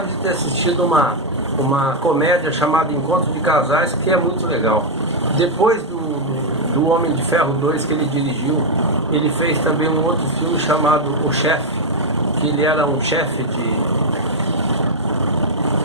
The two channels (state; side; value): normal; both; correlation 0.00